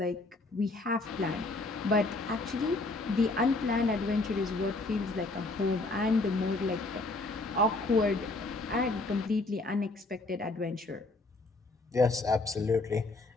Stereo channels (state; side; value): quieter; right; 3.1 dB